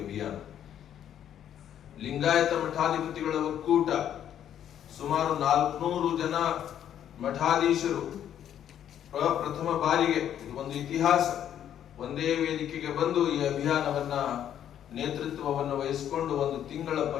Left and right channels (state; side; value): quieter; right; 10.1 dB